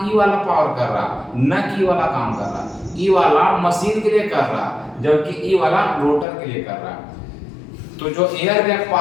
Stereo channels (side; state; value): right; drops out; at 6.2 s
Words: ई वाला पावर कर रहा, न कि वाला काम कर रहा। ई वाला मशीन के लिए कर रहा जबकि ई वाला रोटर के लिए कर रहा। तो जो एयर गैप